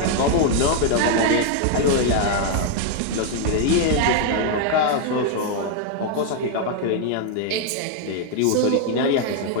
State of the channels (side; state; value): both; different; correlation 0.00